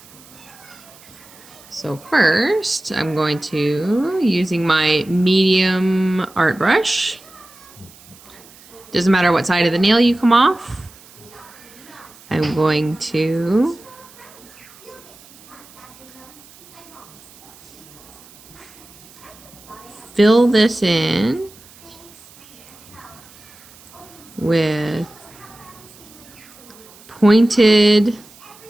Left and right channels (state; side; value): noise; right; hiss, 23 dB below the sound